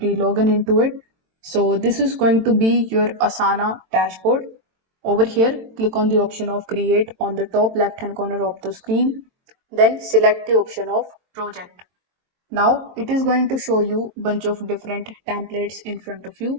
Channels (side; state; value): left; late; 22 ms